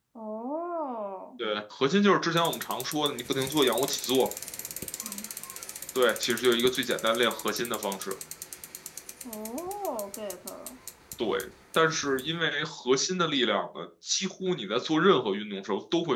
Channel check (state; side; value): identical; both; correlation 1.00